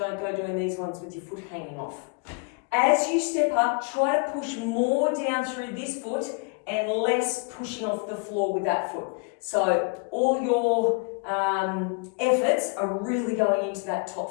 go doing these ones with your foot hanging off. As you step up, try to push more down through this foot and less pushing off the floor with that foot. So all your efforts are really going into that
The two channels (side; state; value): right; quieter; 33.3 dB